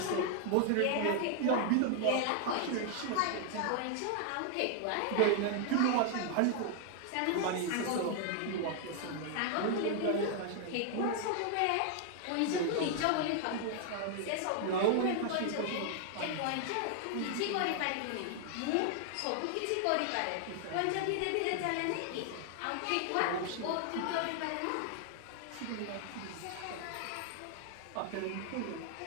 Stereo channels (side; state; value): both; different; correlation 0.00